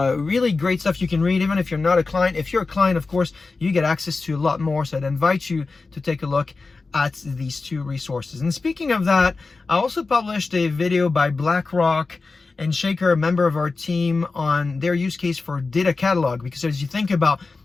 really great stuff you can read, even if you're not a client. If you're a client, of course, you get access to a lot more. So I'd invite you to take a look at these 2 resources. And speaking of that, I also published a video by BlackRock and Shaker, a member of our team, on their use case for data catalog. Because as you think about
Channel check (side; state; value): right; quieter; 3.9 dB